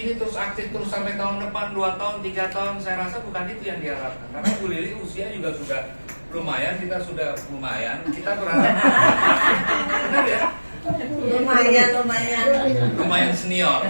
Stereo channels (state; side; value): inverted; both; correlation -1.00